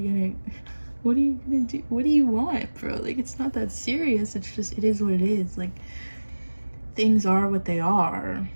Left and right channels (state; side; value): inverted; both; correlation -1.00